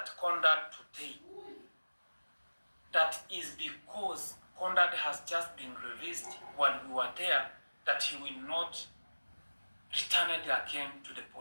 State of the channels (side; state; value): both; inverted; correlation -1.00